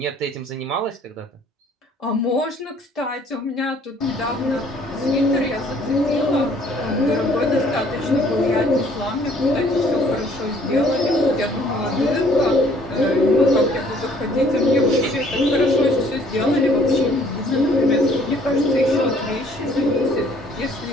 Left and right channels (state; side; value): normal; both; correlation 0.59